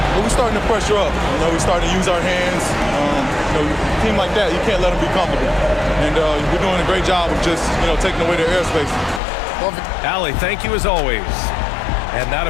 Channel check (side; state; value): right; drops out; at 9.2 s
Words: we're starting to pressure up. You know, we're starting to use our hands. You know, a team like that, you can't let them be comfortable. And we're doing a great job of just, you know, taking away their airspace. Well, Allie, thank you as always. And that